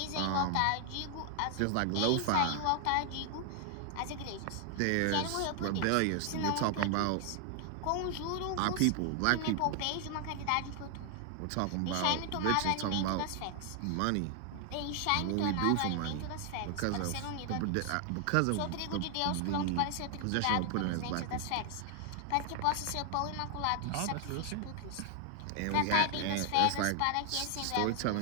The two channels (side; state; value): both; different; correlation 0.00